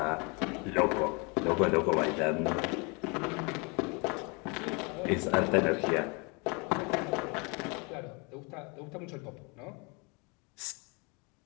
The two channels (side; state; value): right; quieter; 31.0 dB